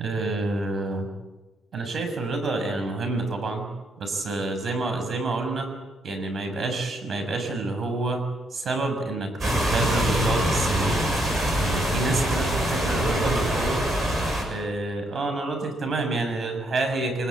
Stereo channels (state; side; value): normal; both; correlation 0.74